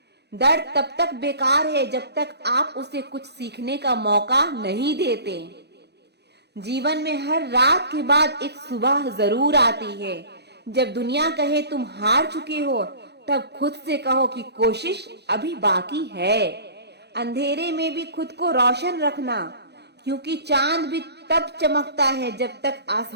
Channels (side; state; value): left; late; 0.48 ms